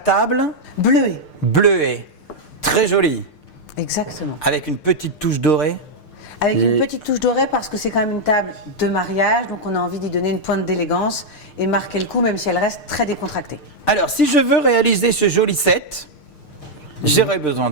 Bleuet. bleuet, très jolie, Exactement. avec une petite touche dorée. Avec une petite touche dorée parce que c'est quand même une table de mariage, donc on a envie d'y donner une pointe d'élégance et marquer le coup même si elle reste très décontractée. Alors, si je veux réaliser ce joli set, j'aurais besoin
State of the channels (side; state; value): right; late; 6.6 ms